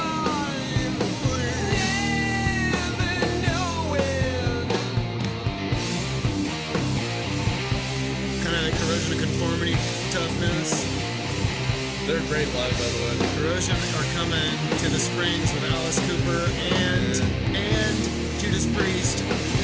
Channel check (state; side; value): identical; both; correlation 1.00